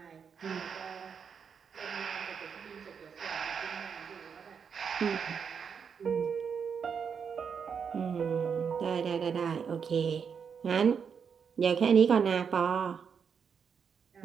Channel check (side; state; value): left; quieter; 6.6 dB